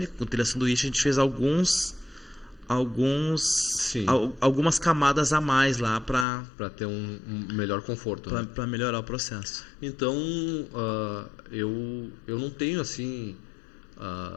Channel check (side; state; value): right; drops out; at 6.2 s